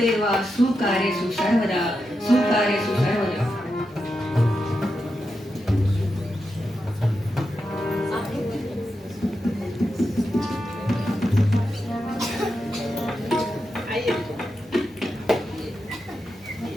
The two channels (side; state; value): both; normal; correlation 0.87